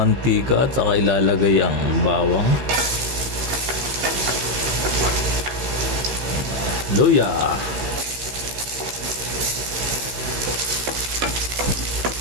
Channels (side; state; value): left; late; 15 ms